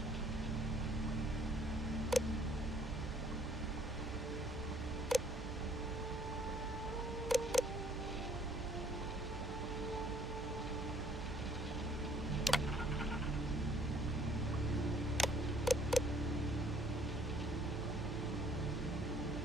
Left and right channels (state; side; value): normal; both; correlation 0.60